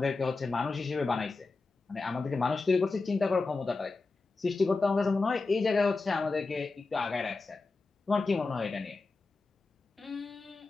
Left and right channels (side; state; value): right; quieter; 3.8 dB